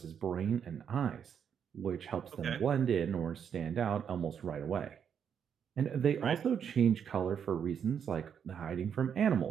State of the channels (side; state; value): left; quieter; 7.8 dB